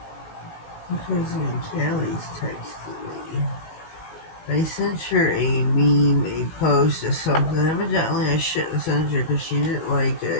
My cousin in Cali's texted me. I sent her a meme, a post or something. Evidently I shouldn't send her because she didn't like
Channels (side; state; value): right; late; 19 ms